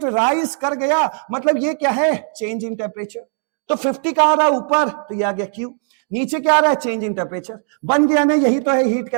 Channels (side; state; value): left; silent; digital silence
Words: राइज कर गया, मतलब ये क्या है, चेंज इन टेम्परेचर। तो 50 का आ रहा है ऊपर, तो ये आ गया क्यू, नीचे क्या आ रहा है, चेंज इन टेम्परेचर, बन गया ना, यही तो है हीट